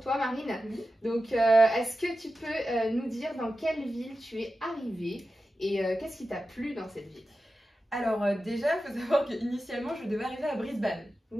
Marine. Donc est-ce que tu peux nous dire dans quelle ville tu es arrivée et qu'est-ce qui t'a plu dans cette ville? Alors déjà il faut savoir qu'initialement je devais arriver à Brisbane.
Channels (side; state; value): both; normal; correlation 0.93